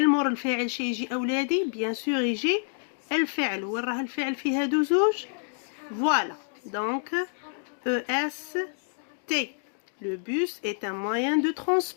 مور الفاعل شي يجي أولادي بيان سور يجي الفعل. وين راه الفعل في هادو زوج؟ فوالا دونك EST. Le bus est un moyen de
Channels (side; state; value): right; silent; 59 dB below the other